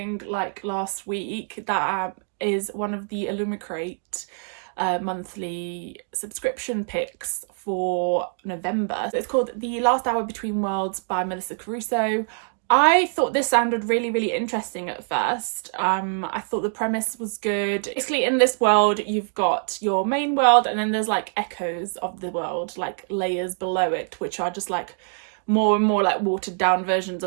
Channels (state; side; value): silent; left; 62 dB below the other